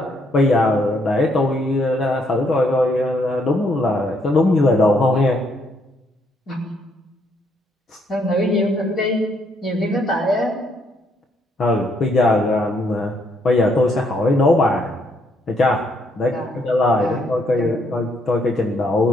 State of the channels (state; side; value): normal; both; correlation 0.71